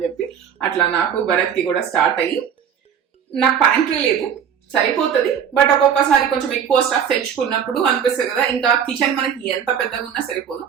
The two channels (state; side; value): quieter; left; 8.2 dB